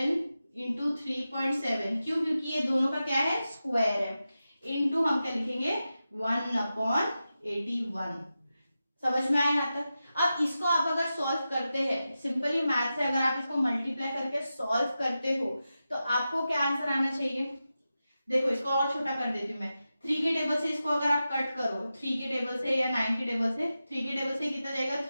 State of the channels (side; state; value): both; inverted; correlation -0.92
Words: इंटू 3.7, क्यों, क्योंकि ये दोनों का क्या है, स्क्वायर है, इंटू हम क्या लिखेंगे 1/81। समझ में आया यहाँ तक। अब इसको आप अगर सॉल्व करते हैं, सिंपली मैथ से अगर आप इसको मल्टीप्लाई करके सॉल्व करते हो तो आपको क्या आंसर आना चाहिए, देखो इसको और छोटा कर देती हूँ मैं, 3 के टेबल से इसको अगर आप कट करो 3 के टेबल से या 9 के टेबल से, 3 के टेबल से कितना जाएगा